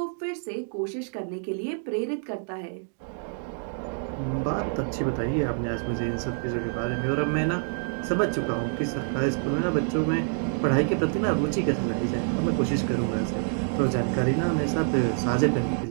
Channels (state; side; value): silent; left; 60 dB below the other